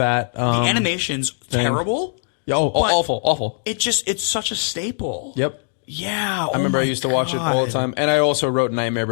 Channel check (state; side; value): silent; right; digital silence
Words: the animation's terrible. Oh, awful. It's such a staple. Yep. Yeah. I remember I used to watch it all the time. And I also wrote Nightmare